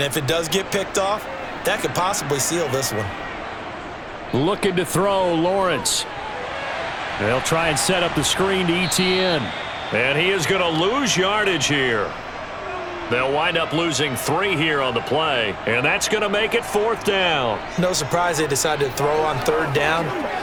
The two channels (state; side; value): identical; both; correlation 1.00